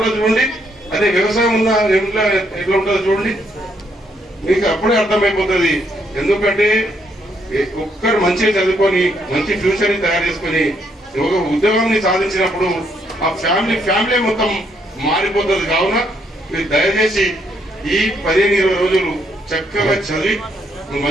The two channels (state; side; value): normal; both; correlation 0.73